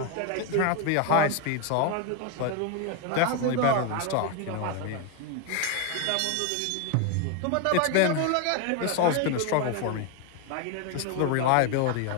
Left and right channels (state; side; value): different; both; correlation 0.01